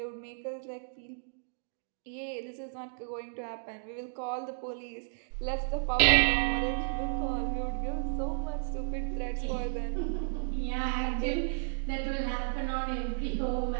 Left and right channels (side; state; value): left; silent; digital silence